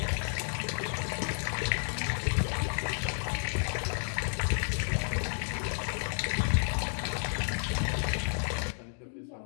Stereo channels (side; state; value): right; silent; 57 dB below the other